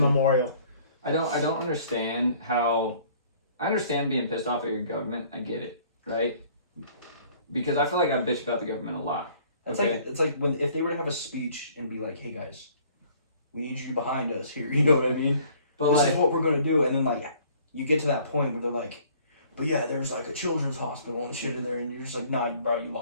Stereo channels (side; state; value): both; inverted; correlation -0.56